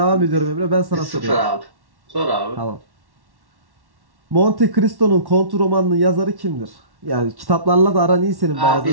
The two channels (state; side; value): late; left; 1.1 ms